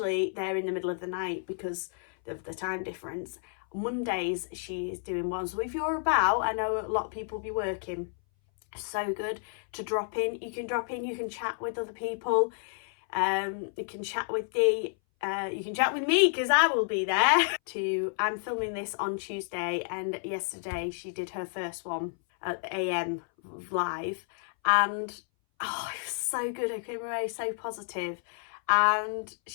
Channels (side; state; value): right; silent; 58 dB below the other